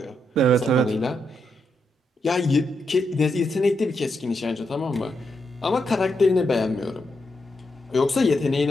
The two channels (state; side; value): normal; both; correlation 0.82